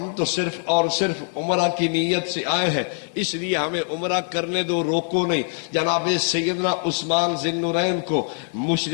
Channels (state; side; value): silent; right; 62 dB below the other